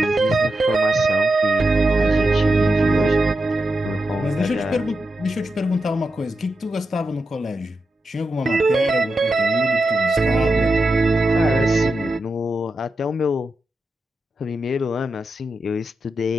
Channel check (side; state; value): both; normal; correlation 0.88